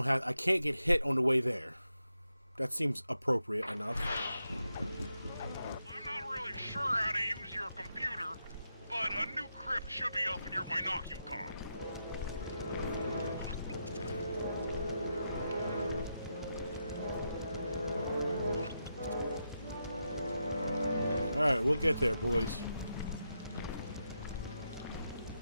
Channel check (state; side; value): inverted; both; correlation -0.85